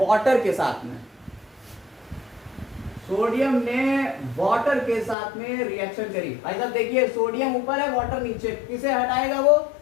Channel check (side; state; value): right; drops out; at 5.2 s